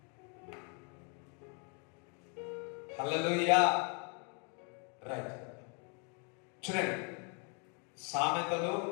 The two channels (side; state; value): right; quieter; 37.3 dB